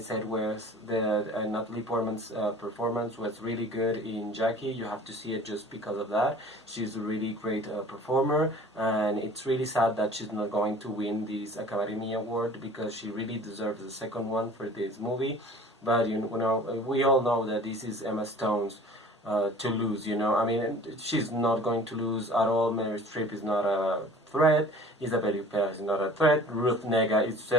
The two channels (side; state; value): both; normal; correlation 0.46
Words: was that Natalie Portman's performance was really good in Jackie. You have to see it just because of that. She's a really great performer, and it's really sad that she's not going to win this Academy Award because she really deserves the second one for this movie. But we all know that this is Emma Stone's to lose. I mean, she's not going to lose at all. Meryl Streep is not a threat. Isabelle Huppert is not a threat. Ruth Negga is